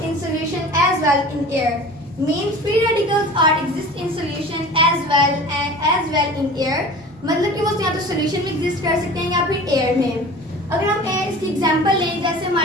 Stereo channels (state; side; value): normal; both; correlation 0.39